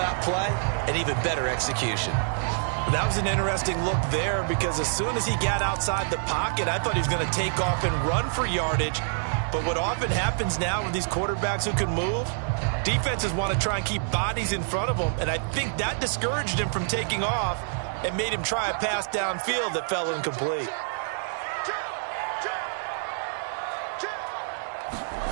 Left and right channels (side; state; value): left; silent; 60 dB below the other